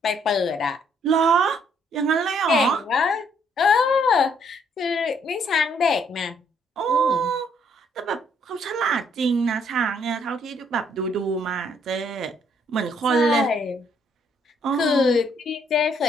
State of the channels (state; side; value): normal; both; correlation 0.68